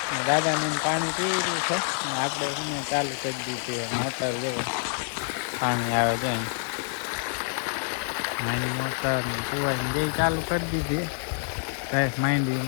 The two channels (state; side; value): silent; right; 60 dB below the other